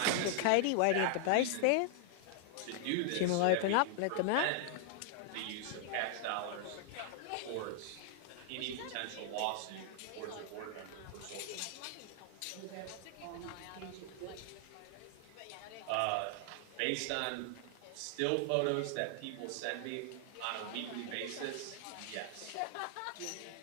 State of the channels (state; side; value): different; both; correlation -0.01